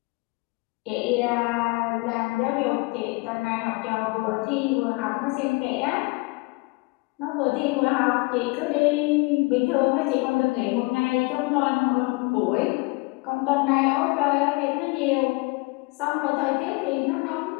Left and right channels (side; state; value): right; quieter; 26.5 dB